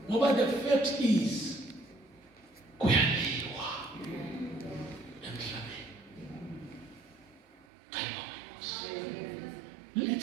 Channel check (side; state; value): left; drops out; at 7.7 s